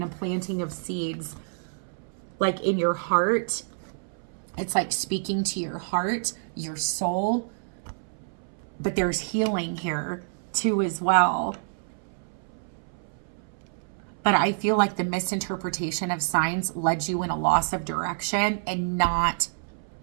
a planting of seeds, like in your heart. It's like speaking to your heart, your soul. But there's healing here too as well. But I feel like the misinterpretation of signs led you in a loss of direction and not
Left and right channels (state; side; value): silent; left; 60 dB below the other